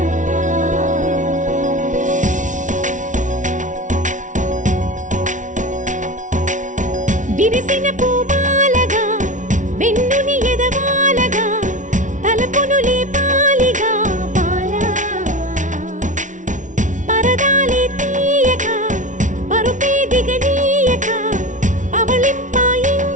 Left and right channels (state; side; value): late; left; 0.37 ms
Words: విరిసిన పూమాలగా వెన్నుని ఎదవాలగా తలపును లేపాలిగా బాలా, పరదాలే తీయక పరుపే దిగనీయక